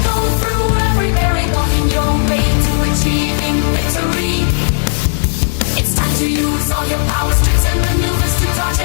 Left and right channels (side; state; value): right; silent; 71 dB below the other